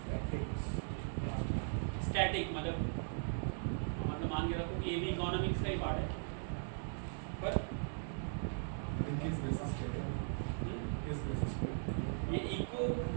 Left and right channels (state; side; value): silent; left; digital silence